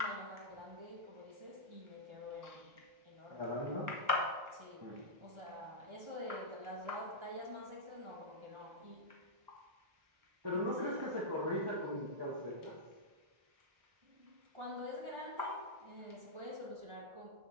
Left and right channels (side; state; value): left; late; 1.3 ms